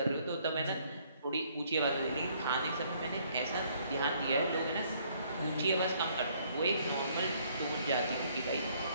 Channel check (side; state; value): both; inverted; correlation -0.65